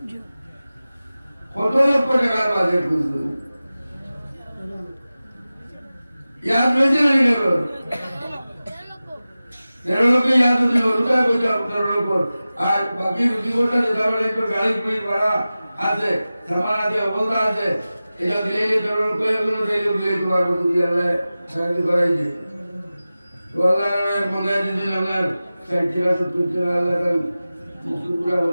কত লক্ষ টাকার বাজেট বুঝলো याद वैसे नहीं करो 13 लोग याद नहीं होता है कुछ 13 लोग आज बाकी रुचि कोटा देता है तो गाड़ी कोई बड़ा आते सामान आते बोलता आते এটা দিলে 13 লোग कोई কোনো দিলে দিলে তোমার বন্ধু দিয়ে আল্লাহ সাহায্য করাই যে তো আল্লাহর মনে দিন আপনার সাইটিরা সুতিরা আল্লাহ কান মুসুরা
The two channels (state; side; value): inverted; both; correlation -0.96